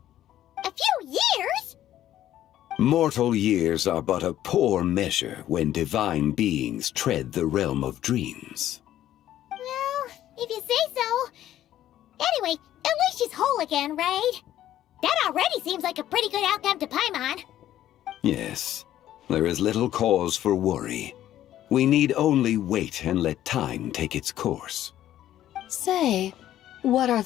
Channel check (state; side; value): quieter; right; 12.5 dB